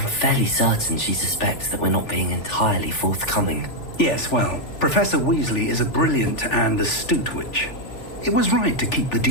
fairly certain she suspects that we're not being entirely forthcoming. Yes, well, Professor Weasley is a brilliant and astute witch. It was right to keep the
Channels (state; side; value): late; right; 3.4 ms